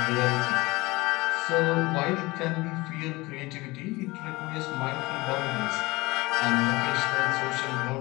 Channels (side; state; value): right; quieter; 21.9 dB